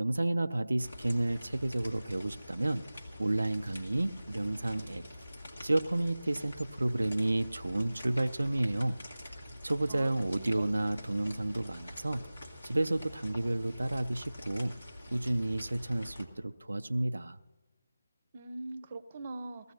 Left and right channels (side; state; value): both; inverted; correlation -0.99